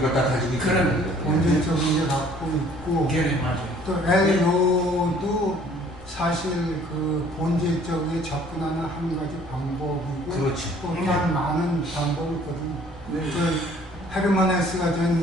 걸 다 가지고 있는 그런 거죠. 본질적인 게 갖고 있고 걔네 맞아요. 또 엘로도 사실 그 본질적으로 접근하는 한 가지 방법이고 그렇지. 또 다른 많은 방법이 있거든요. 그 헤르만헤스가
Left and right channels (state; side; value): normal; both; correlation 0.56